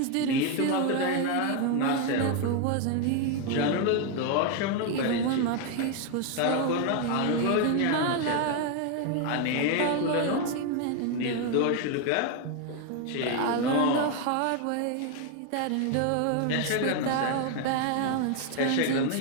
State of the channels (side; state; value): both; different; correlation 0.01